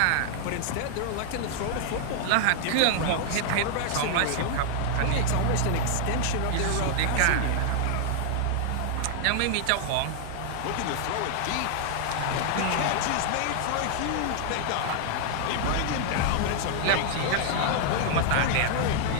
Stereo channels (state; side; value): different; both; correlation 0.00